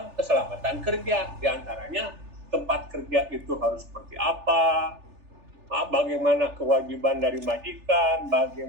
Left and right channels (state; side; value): late; left; 3.4 ms